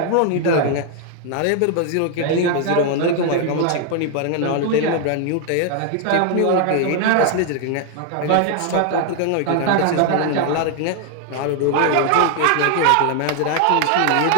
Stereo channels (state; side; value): different; both; correlation 0.00